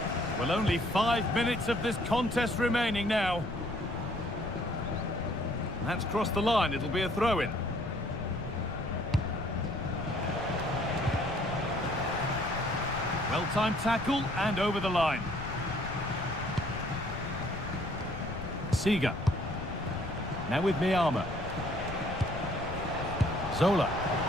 Well, only 5 minutes of this contest remaining now. That's crossed the line. It'll be a throw-in. Well-timed tackle and over the line. Seeger. Now with Miyama. Zola.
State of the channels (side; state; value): left; noise; rumble, 9 dB below the sound